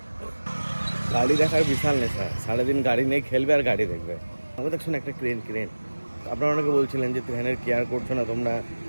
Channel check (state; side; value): inverted; both; correlation -1.00